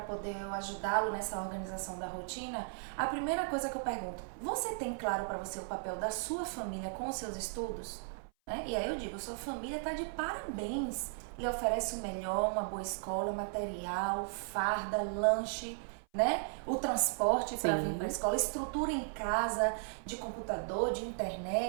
poder eu ajudá-lo nessa organização da rotina, a primeira coisa que eu pergunto, você tem claro para você o papel da sua família com os seus estudos? Né? E aí eu digo, sua família está de parabéns. Lhe oferece o melhor, uma boa escola, material, farda, lanche, né? O transporte para vir para a escola, estrutura em casa, de computador, de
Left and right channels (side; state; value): left; silent; 54 dB below the other